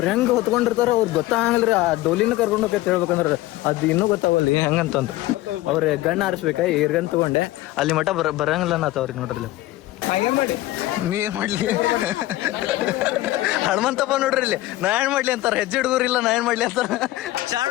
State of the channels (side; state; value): right; quieter; 17.1 dB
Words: ಹೆಂಗ್ ಹೊತ್ಕೊಂಡಿರ್ತಾರ ಅವ್ರ ಗೊತ್ತಾಗಲ್ರಿ. ಆ ಡೋಲಿನ ಕರ್ಕೊಂಡು ಹೋಗೈತೆ ಹೇಳ್ಬೇಕಂದ್ರ ಅದ್ ಇನ್ನೂ ಗೊತ್ತಾಗಲ್ಲ ಹೆಂಗಂತಂದ್. ಅವ್ರ ಗಣ್ಣ ಆರಿಸ್ಬೇಕ ಇರ್ಗನ್ ತಗೊಂಡೆ ಅಲ್ಲಿ ಮಠ ಬರಂಗಿಲ್ಲ ನಾತವ್ರಿಗೆ ನೋಡ್ರಿ. ನೀ ಏನ್ ಮಾಡ್ಲಿ ಹನುಮಂತಪ್ಪ ನೋಡ್ರಿ ಇಲ್ಲಿ ನಾ ಏನ್ ಮಾಡ್ಲಿ ಅಂತಾರ. ಹೆಜ್ಜೆ ಹುಡುಗರಿಲ್ಲ ನಾ ಏನ್ ಮಾಡ್ಲಿ ಅಂತಾರ.